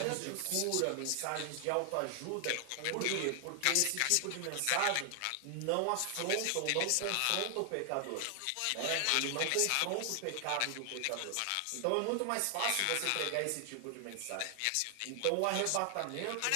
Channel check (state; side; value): different; both; correlation 0.00